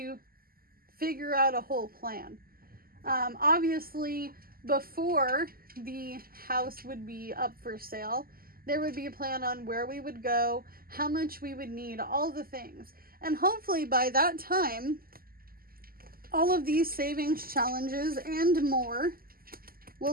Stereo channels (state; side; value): late; left; 0.42 ms